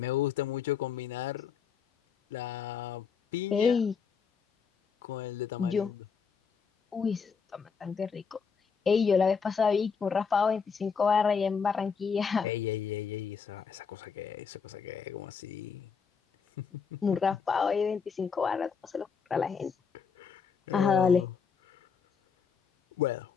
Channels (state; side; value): quieter; right; 6.1 dB